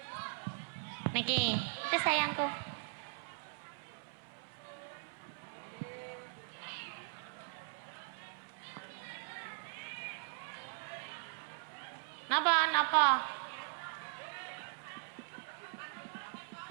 Niki, itu sayangku. Napa?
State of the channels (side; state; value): left; silent; 51 dB below the other